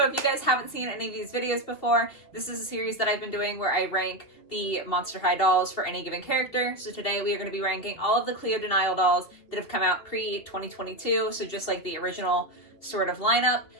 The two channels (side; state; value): right; late; 2.7 ms